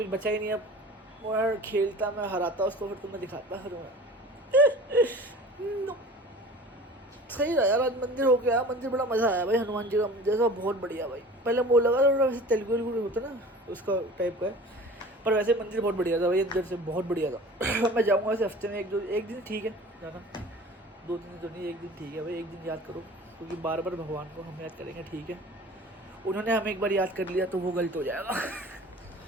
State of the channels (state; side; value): normal; both; correlation 0.41